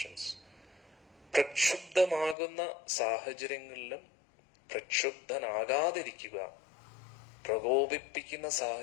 പ്രക്ഷുബ്ധമാകുന്ന സാഹചര്യങ്ങളിലും പ്രക്ഷുബ്ധനാകാതിരിക്കുക, പ്രകോപിപ്പിക്കുന്ന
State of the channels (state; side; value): drops out; right; at 2.4 s